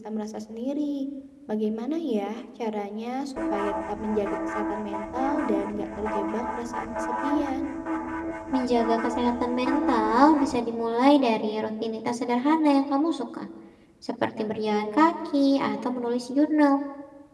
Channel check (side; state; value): both; identical; correlation 1.00